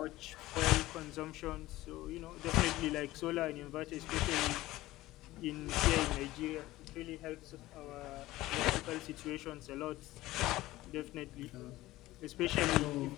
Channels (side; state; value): right; quieter; 17.2 dB